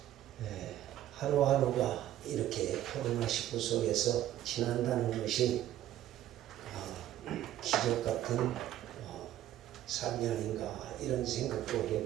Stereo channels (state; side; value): quieter; left; 12.9 dB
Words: 하루하루가 이렇게 코로나19 속에서 지난다는 것이 기적 같은 삶이 아닌가 이런 생각도